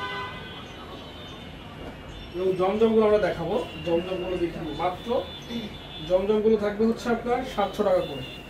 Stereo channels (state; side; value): identical; both; correlation 1.00